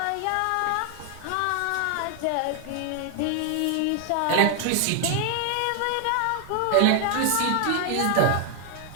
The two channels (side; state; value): both; different; correlation 0.00